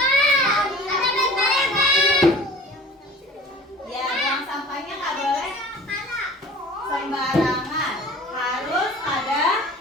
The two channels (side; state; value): both; normal; correlation 0.43